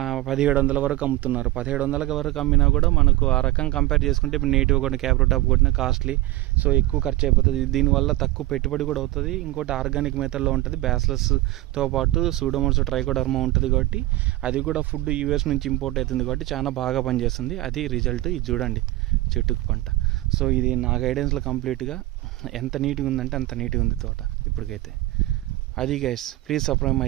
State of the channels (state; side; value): quieter; left; 17.3 dB